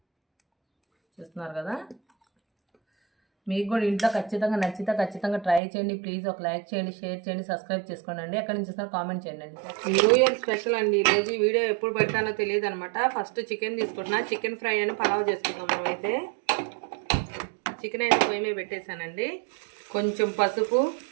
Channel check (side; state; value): left; drops out; at 5.6 s